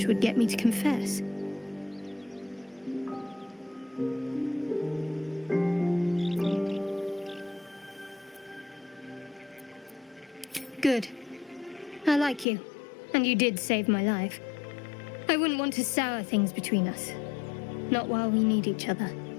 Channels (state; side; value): drops out; right; at 12.5 s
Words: would get me to confess? Good. I like you. And you did save my life. I wouldn't want to sour things between us. Not while we need each other.